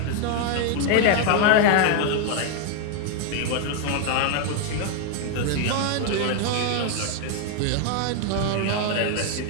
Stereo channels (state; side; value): different; both; correlation 0.01